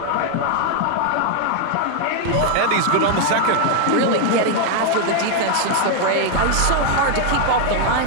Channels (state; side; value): different; both; correlation 0.00